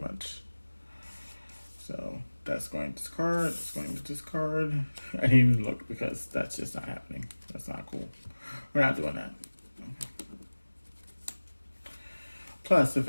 So that's going to discard. It's going to discard. I didn't even look because that's just not happening. That's not cool. We're not doing that. Plus, if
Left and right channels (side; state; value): both; inverted; correlation -1.00